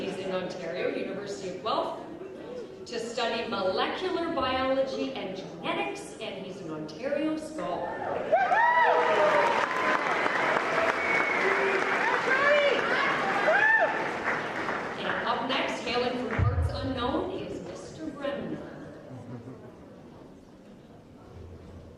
in Ontario, University of Guelph, to study molecular biology and genetics, and he's an Ontario Scholar. Up next, hailing from parts unknown, is Mr. Bremner.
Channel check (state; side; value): identical; both; correlation 1.00